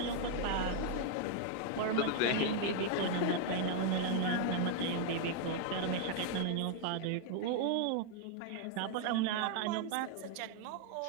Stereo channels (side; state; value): both; different; correlation 0.00